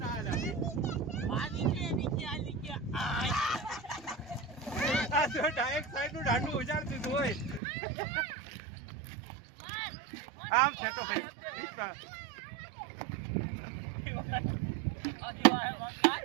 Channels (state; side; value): drops out; left; at 7.6 s